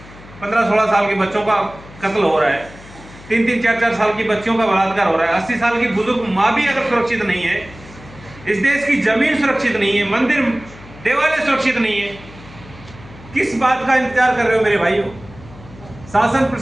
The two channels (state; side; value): noise; left; hum, 20 dB below the sound